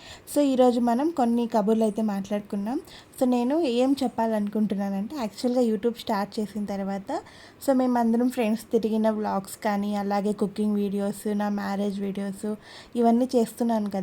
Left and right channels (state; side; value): identical; both; correlation 1.00